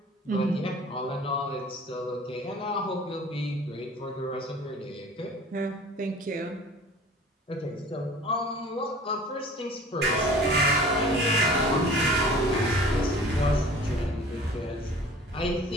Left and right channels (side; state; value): both; normal; correlation 0.46